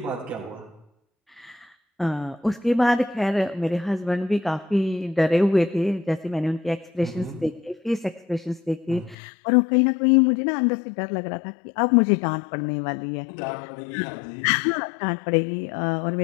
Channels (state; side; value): drops out; right; at 9.2 s